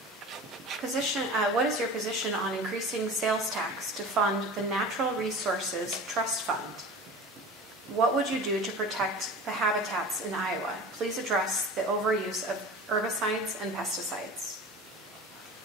What is your position on increasing sales tax to fund the Natural Resources Trust Fund? What would you do to protect the habitats in Iowa? Please address the overuse of herbicides and pesticides.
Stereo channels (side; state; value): both; normal; correlation 0.36